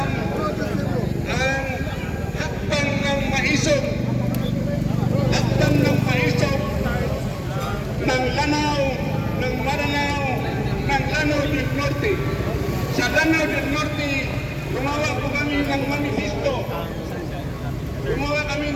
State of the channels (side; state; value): both; identical; correlation 1.00